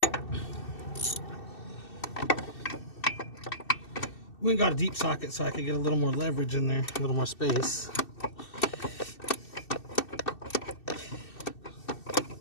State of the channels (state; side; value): late; right; 2.6 ms